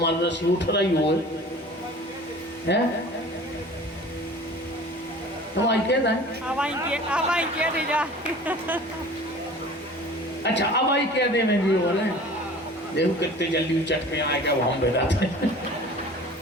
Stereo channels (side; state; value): both; normal; correlation 0.43